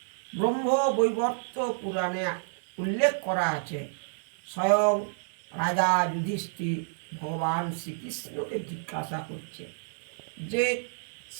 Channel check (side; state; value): left; silent; digital silence